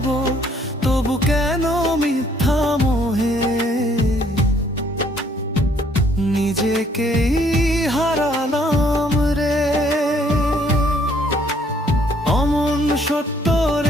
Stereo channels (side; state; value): both; normal; correlation 0.64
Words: তবু কেন মিথ্যা মোহে নিজেকেই হারালাম রে। অমন সত্য